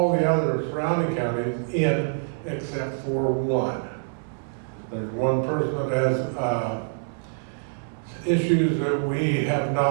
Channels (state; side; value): silent; left; digital silence